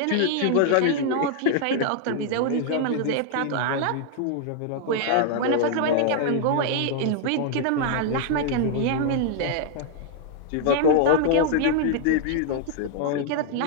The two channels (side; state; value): both; different; correlation 0.00